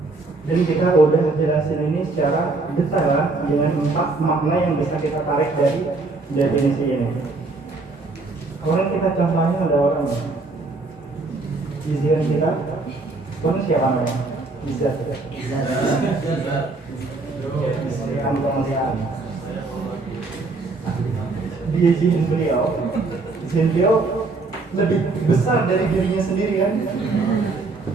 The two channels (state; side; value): quieter; left; 3.6 dB